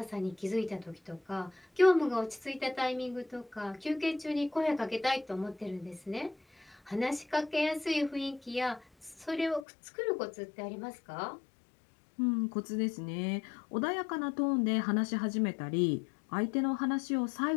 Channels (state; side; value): drops out; right; at 9.7 s